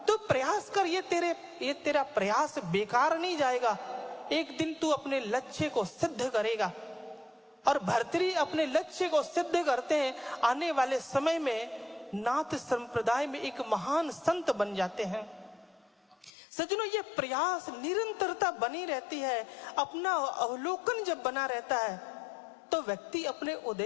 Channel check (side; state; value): right; drops out; at 16.3 s